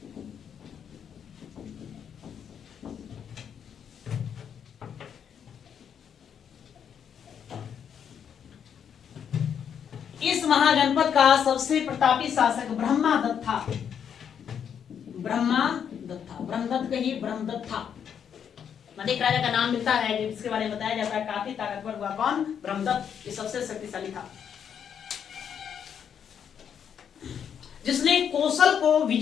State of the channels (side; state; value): right; quieter; 8.1 dB